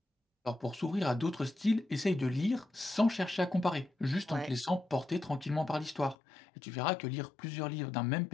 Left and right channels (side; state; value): right; drops out; at 6.2 s